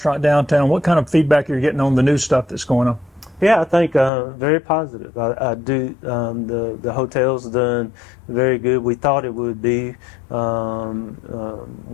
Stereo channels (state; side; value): drops out; right; at 4.1 s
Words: downtown. What kind of feedback are you getting on the new stuff that's going on? Yeah, I think very positive. I do. The hotel's done very good. We thought it would be